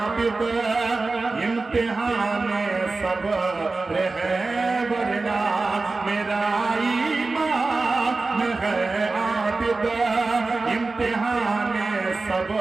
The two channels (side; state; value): left; quieter; 3.7 dB